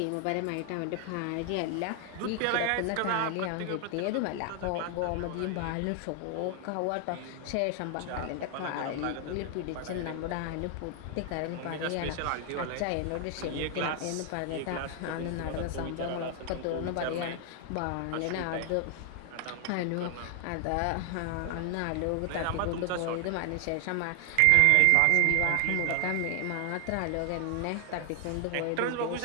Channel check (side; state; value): both; different; correlation 0.00